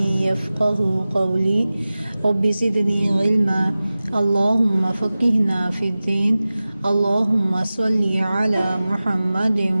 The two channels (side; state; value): both; inverted; correlation -0.97